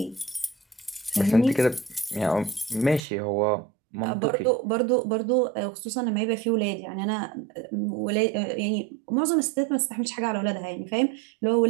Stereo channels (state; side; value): drops out; left; at 3.0 s